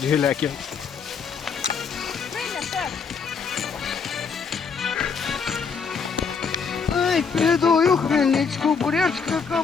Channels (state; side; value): quieter; right; 5.7 dB